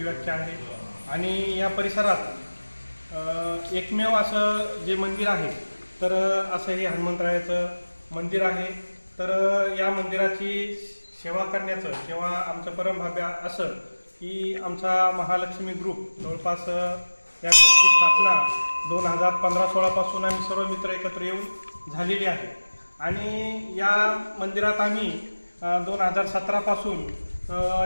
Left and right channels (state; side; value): inverted; both; correlation -1.00